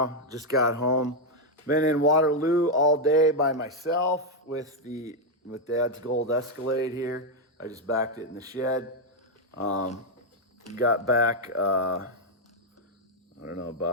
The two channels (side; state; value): both; normal; correlation 0.01